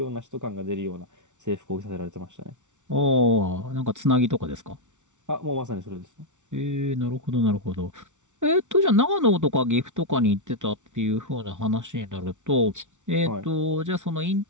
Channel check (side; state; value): left; late; 0.86 ms